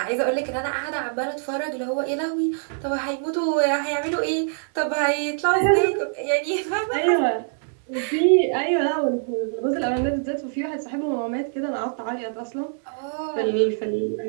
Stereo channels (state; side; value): silent; left; 62 dB below the other